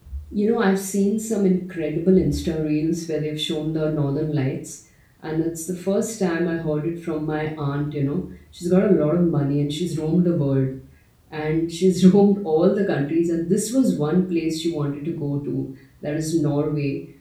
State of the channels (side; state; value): both; identical; correlation 1.00